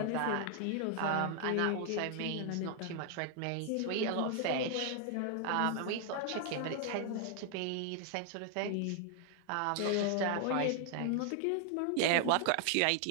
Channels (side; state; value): both; different; correlation 0.00